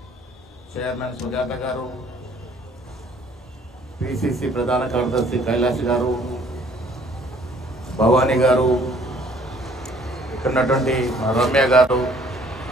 చైర్మన్ సుజాత గారు, పిసిసి ప్రధాన కార్యదర్శి కైలాష్ గారు, భవానీ గారు, ఇక్కడ ఉన్నటువంటి రమ్య గారు,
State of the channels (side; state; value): both; normal; correlation 0.59